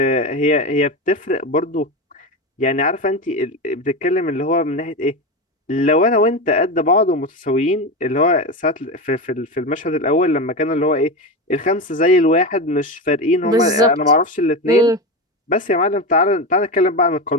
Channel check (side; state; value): both; normal; correlation 0.19